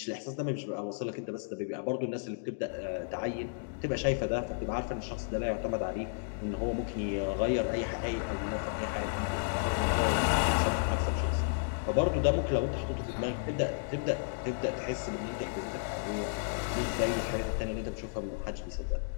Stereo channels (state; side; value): silent; right; digital silence